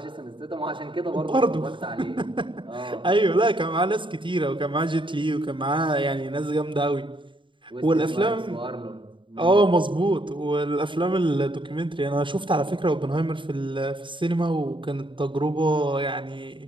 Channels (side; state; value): left; late; 0.24 ms